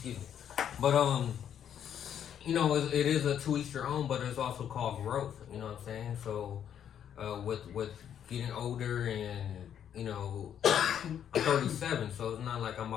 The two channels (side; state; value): right; quieter; 9.3 dB